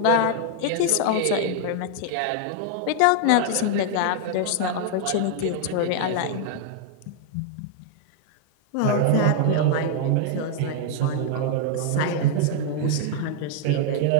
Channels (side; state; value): both; different; correlation 0.00